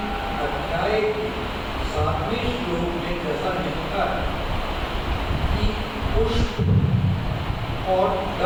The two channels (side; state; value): both; identical; correlation 1.00